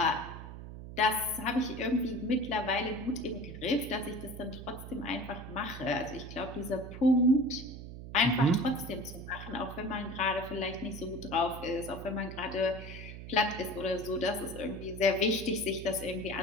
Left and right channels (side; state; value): right; noise; hum, 11 dB below the sound